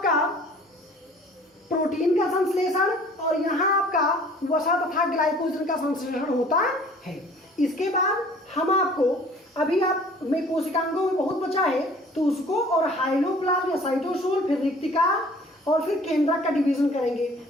प्रोटीन का संश्लेषण और यहाँ आपका वसा तथा ग्लाइकोजन का संश्लेषण होता है। इसके बाद हम आपको अभी आप में कोशिकांगों में बहुत बचा है तो उसको और हाइलोप्लाज्म या साइटोसोल, फिर रिक्तिका और फिर केंद्रक का डिवीजन करेंगे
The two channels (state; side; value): normal; both; correlation 0.51